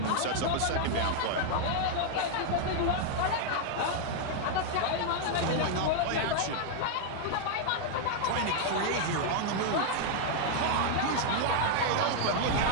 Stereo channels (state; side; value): different; both; correlation 0.00